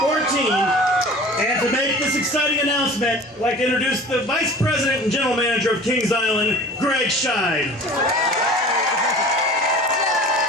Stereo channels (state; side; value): normal; both; correlation 0.42